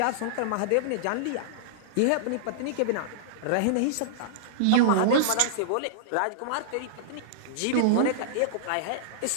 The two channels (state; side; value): different; both; correlation -0.02